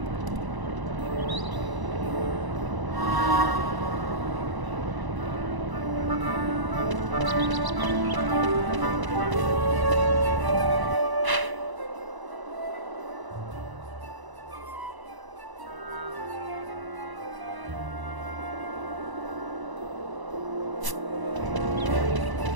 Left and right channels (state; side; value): late; left; 1.0 ms